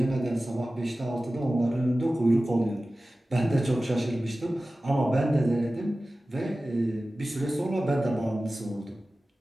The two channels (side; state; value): both; normal; correlation 0.96